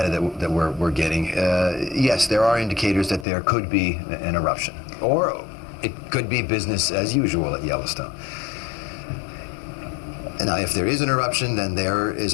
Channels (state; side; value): drops out; right; at 3.2 s